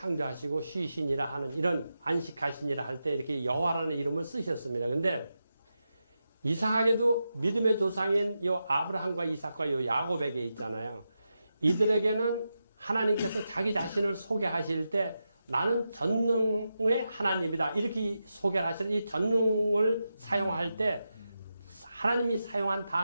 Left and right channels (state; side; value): inverted; both; correlation -0.89